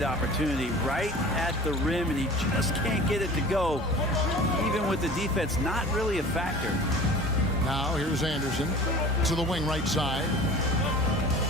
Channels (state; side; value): normal; both; correlation 0.42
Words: opportunity right at the rim, and he just can't get it to go. Even with the defense not really a factor. Now here's Anderson to the wing right side.